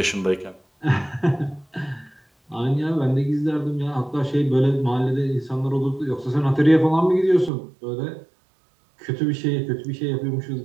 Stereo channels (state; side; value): drops out; left; at 7.5 s